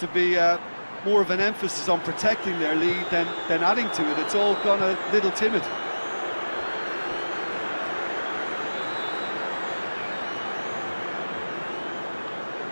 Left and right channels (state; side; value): inverted; both; correlation -1.00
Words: be more of an emphasis on protecting their lead than adding to it. It's all gone a little timid.